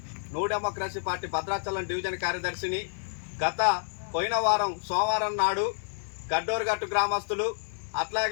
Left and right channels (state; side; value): silent; right; digital silence